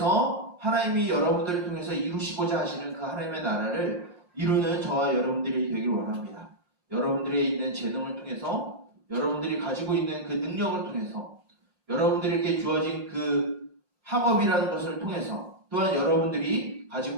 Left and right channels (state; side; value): late; left; 5.6 ms